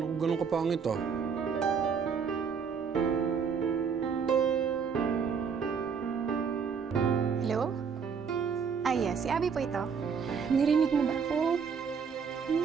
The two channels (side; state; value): left; quieter; 6.3 dB